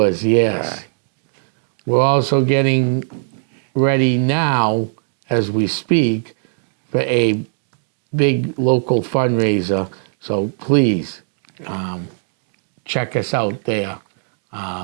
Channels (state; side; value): silent; left; digital silence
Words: yes. Yeah. We're also getting ready now, as we speak, for a big local fundraiser. So please check us out there.